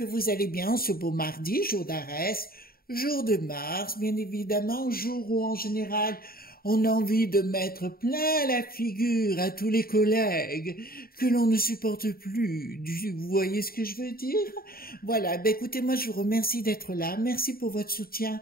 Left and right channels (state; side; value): late; right; 0.43 ms